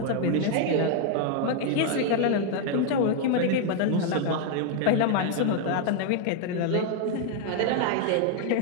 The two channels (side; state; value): both; different; correlation 0.00